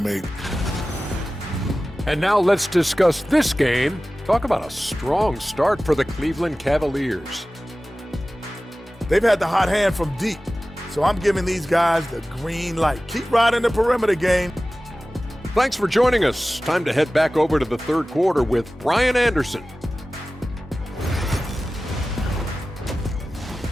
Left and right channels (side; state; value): both; normal; correlation 0.96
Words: And now let's discuss this game. Talk about a strong start for the Cleveland Cavaliers. They've had the hot hand from deep, so I'm giving these guys the green light. Keep riding the perimeter game. Thanks for joining us. Time to head back over to the third quarter with Brian Anderson.